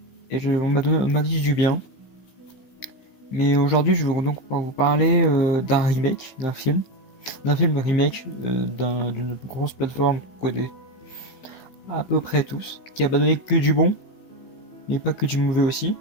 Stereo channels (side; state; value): right; late; 15 ms